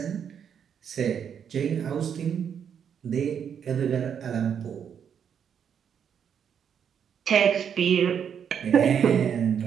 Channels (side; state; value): left; quieter; 7.9 dB